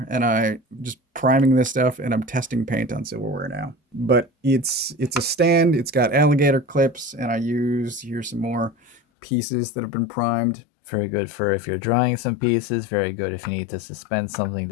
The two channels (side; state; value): right; drops out; at 9.0 s